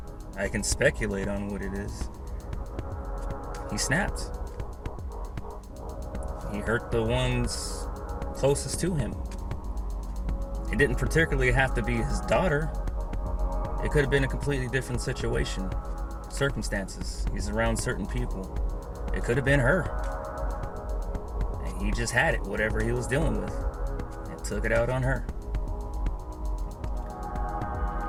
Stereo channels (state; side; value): identical; both; correlation 1.00